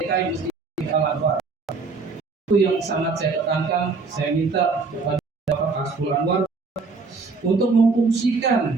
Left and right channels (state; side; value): quieter; left; 4.3 dB